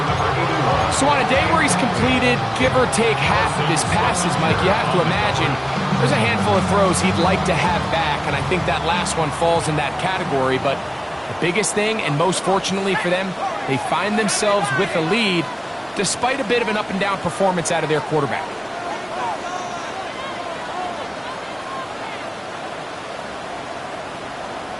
So on a day where he's completed, give or take half of his passes, Mike, you have to imagine there's a handful of throws he'd like to have back, and I think that last one falls in that category. But the biggest thing, and most fortunately for them, they find themselves with a lead despite a bit of an up-and-down performance out of their quarterback.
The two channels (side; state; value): both; identical; correlation 1.00